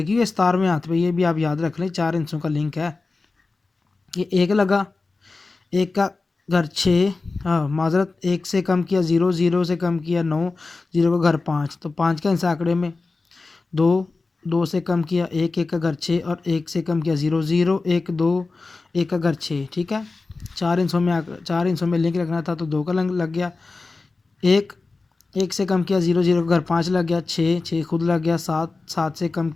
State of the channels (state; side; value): quieter; right; 3.7 dB